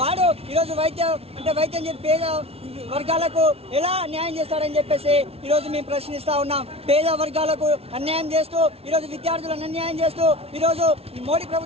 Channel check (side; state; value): left; late; 0.29 ms